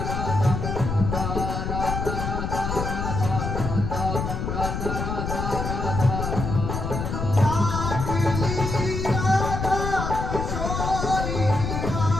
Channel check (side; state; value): left; noise; rumble, 3 dB below the sound